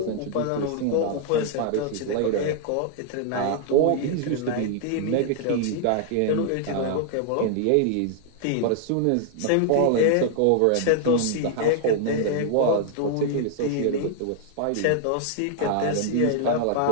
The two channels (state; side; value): different; both; correlation 0.00